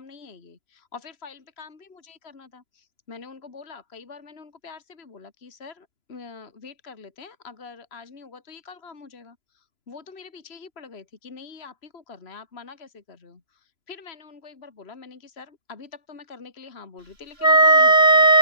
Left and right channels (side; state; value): right; late; 3.0 ms